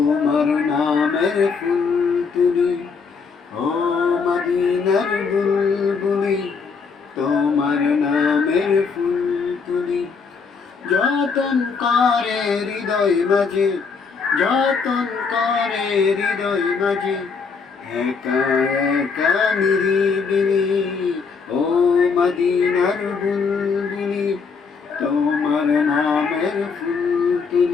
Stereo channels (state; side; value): quieter; right; 5.2 dB